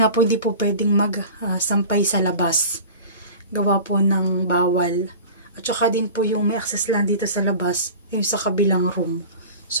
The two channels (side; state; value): both; inverted; correlation -0.38